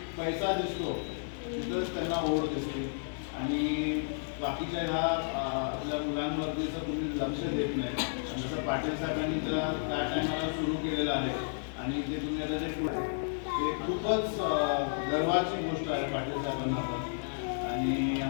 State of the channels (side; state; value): right; silent; digital silence